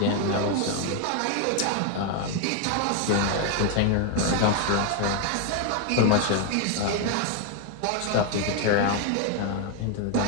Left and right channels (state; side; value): different; both; correlation 0.01